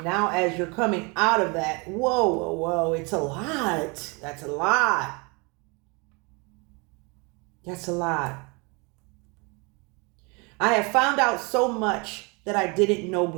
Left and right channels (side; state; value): left; quieter; 29.8 dB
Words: now as you're coming out of that, whoa, it's a lot. That's a lot. That's a lot. I have found out so much that I didn't know